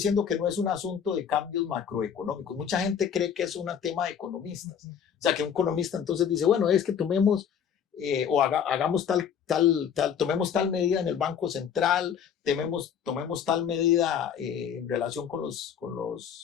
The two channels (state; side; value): quieter; right; 8.0 dB